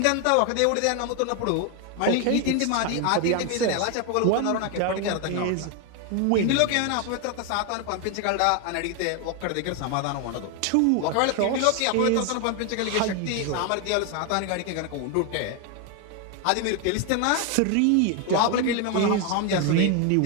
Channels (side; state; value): both; different; correlation 0.01